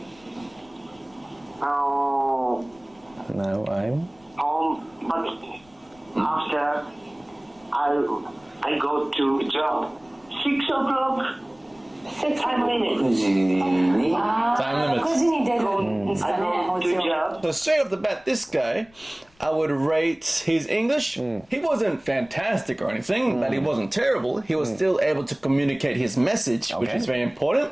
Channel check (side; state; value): left; noise; rumble, 30 dB below the sound